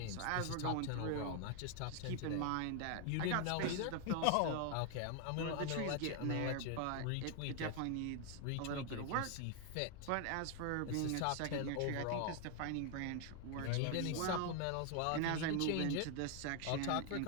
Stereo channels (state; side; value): different; both; correlation 0.00